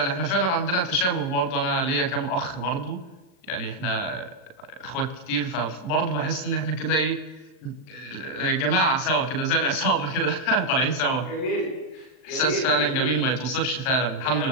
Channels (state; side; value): late; right; 39 ms